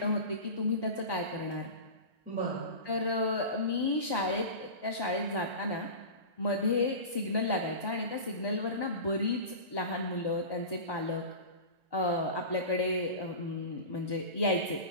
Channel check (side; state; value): left; late; 1.9 ms